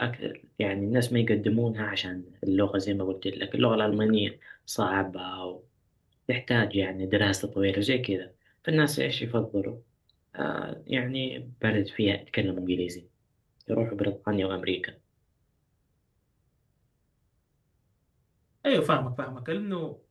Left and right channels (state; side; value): identical; both; correlation 1.00